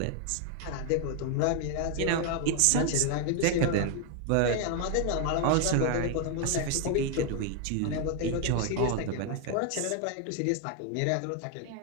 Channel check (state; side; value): different; both; correlation 0.00